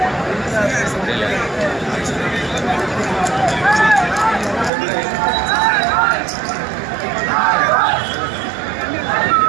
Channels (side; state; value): left; drops out; at 4.7 s